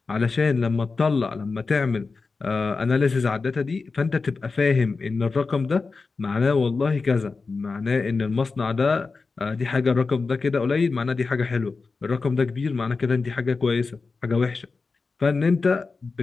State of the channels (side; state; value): right; quieter; 4.3 dB